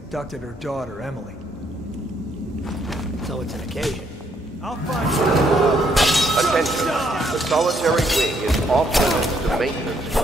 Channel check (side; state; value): both; normal; correlation 0.71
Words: her daughter, Emily. So it's an occasion. I'll find you. Attention, the solitary wing is off limits to maintenance